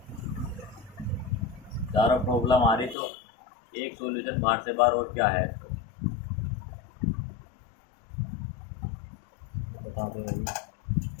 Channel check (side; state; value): right; drops out; at 3.0 s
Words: ज़्यादा प्रॉब्लम आ रही तो एक सॉल्यूशन बाहर से बाहर, और क्या है? बता दे भाई,